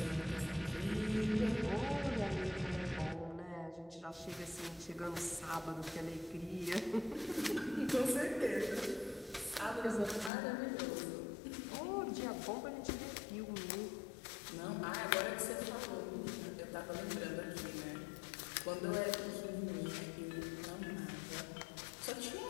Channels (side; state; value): right; drops out; at 10.3 s